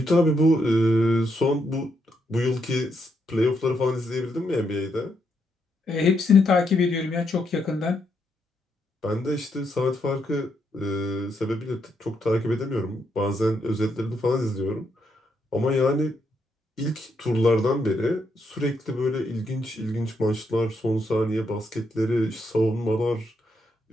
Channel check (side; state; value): both; normal; correlation 0.78